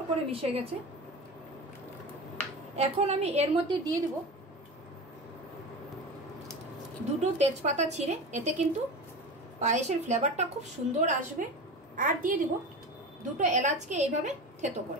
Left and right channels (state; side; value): normal; both; correlation 0.28